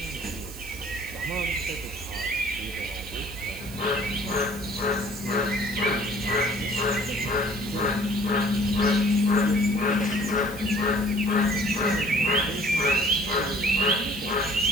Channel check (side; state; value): right; noise; hiss, 17 dB below the sound